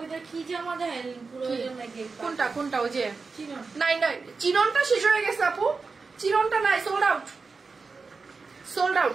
কি জামা দেন পুরো নাকি? কোনটা কোনটা? ওই যে চিনন? নাই নাই, চিননটা শেষ হয়ে গেছে আপু, চিননটা নাই, সোল্ড আউট, সোল্ড আউট।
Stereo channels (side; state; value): left; quieter; 4.5 dB